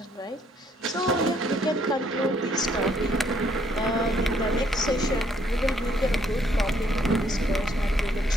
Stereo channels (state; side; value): normal; both; correlation 0.67